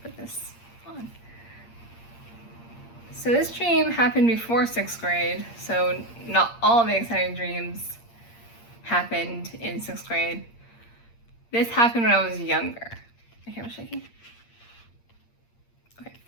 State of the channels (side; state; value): right; late; 8.6 ms